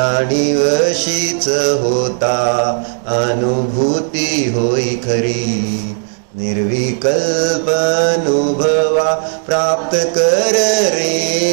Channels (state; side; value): silent; left; digital silence